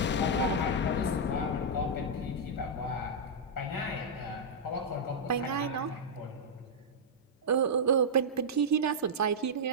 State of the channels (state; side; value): normal; both; correlation -0.07